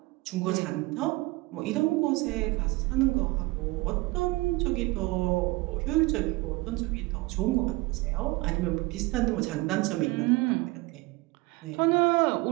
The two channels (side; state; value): left; quieter; 22.6 dB